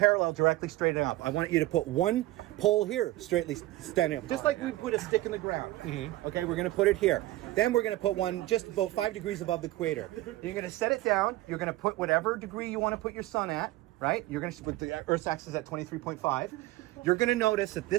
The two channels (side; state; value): left; quieter; 17.4 dB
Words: directly straight up. I want you to put one pole here, straightly standing up. Just like we put a stick in the ground. Okay, we're going to put it here. Then we're going to put one just about 5 degrees above the equator. You're going to set it down. You're going to put whatever degree you want to put your sun at, right? You're going to, with the Earth's axis at 23.5. You're going to notice that